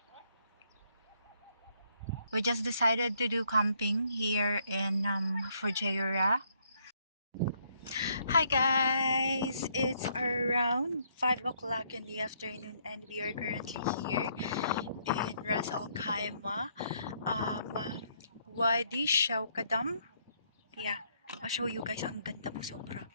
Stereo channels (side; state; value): both; inverted; correlation -0.70